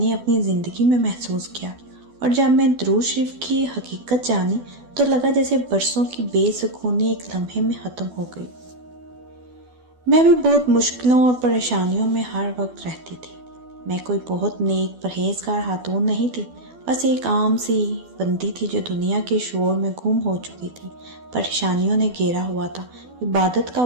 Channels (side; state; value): left; late; 12 ms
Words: اپنی زندگی میں محسوس کیا، اور جب میں درود شریف کی حقیقت جانی تو لگا جیسے برسوں کی بے سکونی ایک لمحے میں ختم ہو گئی۔ میں بھی بہت مشکلوں اور پریشانیوں میں ہر وقت رہتی تھی۔ میں کوئی بہت نیک پرہیزگار خاتون نہیں تھی، بس ایک عام سی بندی تھی جو دنیا کے شور میں گم ہو چکی تھی۔ پریشانیوں نے گھیرا ہوا تھا، عبادت کا